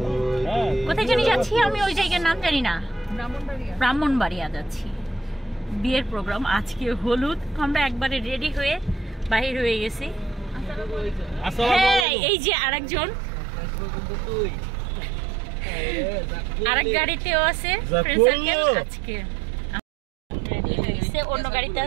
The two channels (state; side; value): drops out; left; at 12.1 s